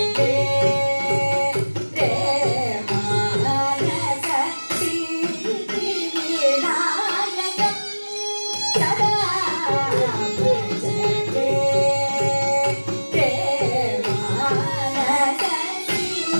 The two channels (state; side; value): inverted; both; correlation -1.00